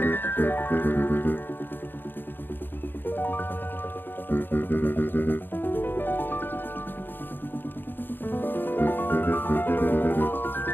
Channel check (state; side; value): late; right; 0.096 ms